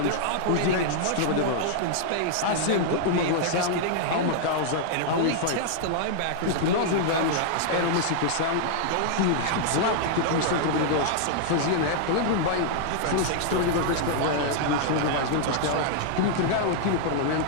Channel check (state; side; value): different; both; correlation -0.01